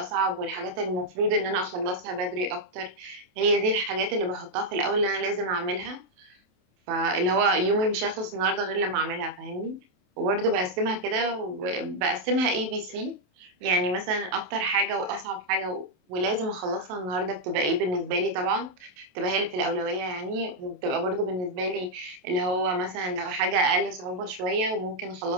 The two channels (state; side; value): late; left; 27 ms